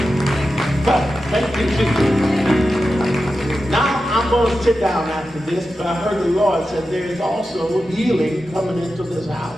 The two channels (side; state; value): both; normal; correlation 0.91